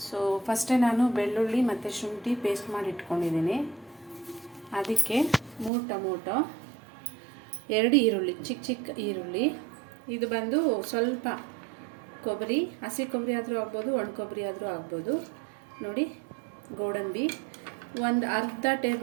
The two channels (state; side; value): drops out; left; at 5.7 s